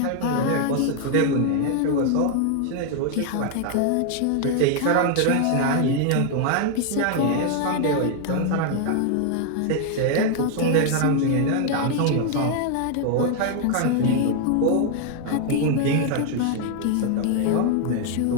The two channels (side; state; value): both; different; correlation 0.00